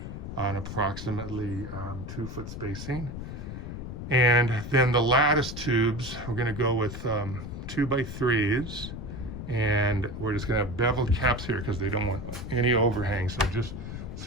on approximately 2 foot spacing. And then the lattice tubes, we're going to go with 2x3s, and we're just going to have beveled caps here because they don't want any overhang. So just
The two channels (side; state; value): left; noise; rumble, 8 dB below the sound